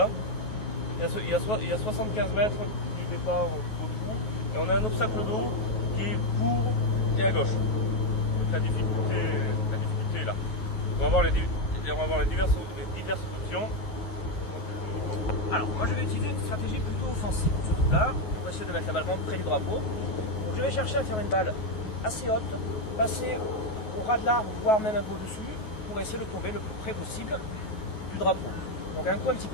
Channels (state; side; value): late; right; 9.3 ms